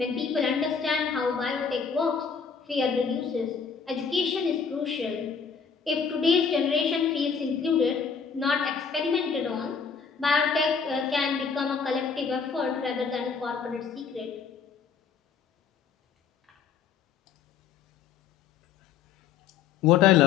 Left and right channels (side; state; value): right; quieter; 6.2 dB